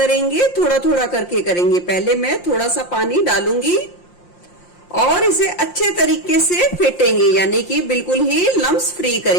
थोड़ा थोड़ा करके करेंगे। पहले मैं थोड़ा सा पानी डालूंगी और इसे अच्छे तरीके से फेंटेंगे, यानी कि बिल्कुल ही लम्स फ्री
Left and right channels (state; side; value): late; right; 5.7 ms